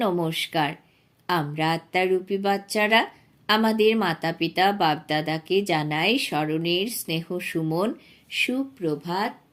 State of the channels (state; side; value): identical; both; correlation 1.00